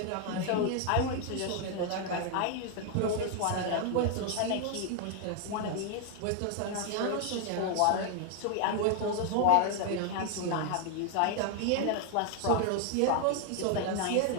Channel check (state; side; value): different; both; correlation 0.00